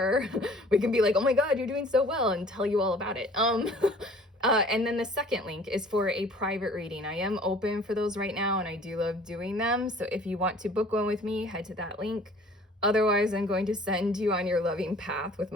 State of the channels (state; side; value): normal; both; correlation 0.51